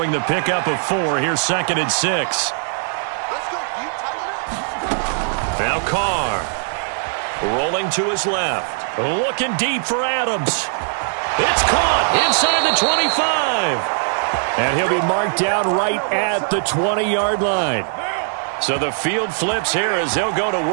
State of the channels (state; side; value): silent; left; digital silence